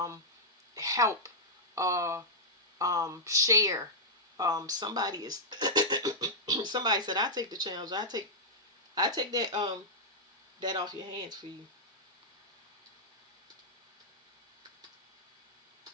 help, share. Somebody is somebody said, I take the challenge. I take that off your hands for you.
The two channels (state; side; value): normal; both; correlation -0.07